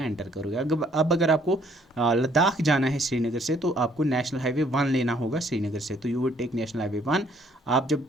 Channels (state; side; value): normal; both; correlation 0.64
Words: एंटर करोगे। अब अगर आपको लद्दाख जाना है श्रीनगर से तो आपको नेशनल हाईवे 1 लेना होगा श्रीनगर से, तो you would take national highway 1। आप जब